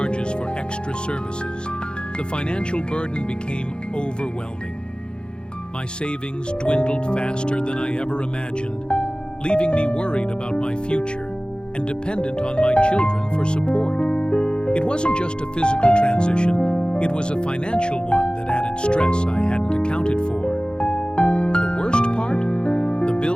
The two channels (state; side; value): late; right; 0.050 ms